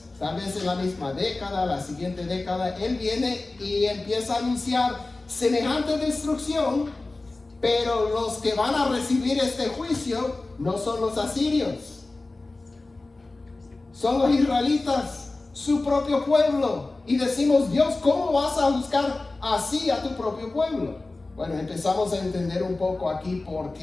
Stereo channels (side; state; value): right; quieter; 3.2 dB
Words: tal vez en la misma década, la siguiente década, él viene y empieza a anunciar semejante destrucción, pero los que van a recibir este juicio no son los asirios, son los israelitas, su propio pueblo. Y decimos, Dios, ¿cómo vas a buscar así a tu propio pueblo? Bueno, empezamos a entender un poco aquí por